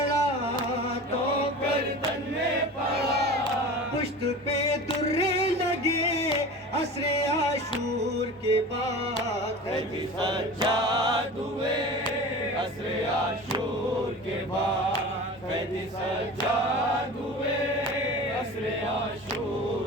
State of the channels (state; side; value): normal; both; correlation 0.35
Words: تو گردن میں پڑا، پشت پہ درے لگے عصر عاشور کے بعد قیدی سجاد ہوئے عصر عاشور کے بعد، قیدی سجاد ہوئے عصر